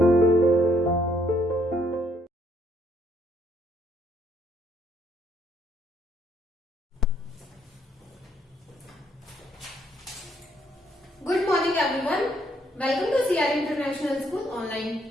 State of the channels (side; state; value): both; normal; correlation 0.70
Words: morning everyone. Welcome to CR International School